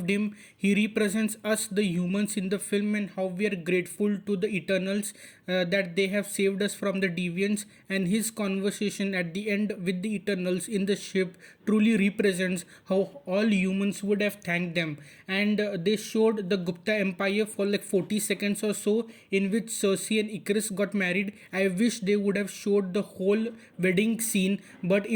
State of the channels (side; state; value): both; identical; correlation 1.00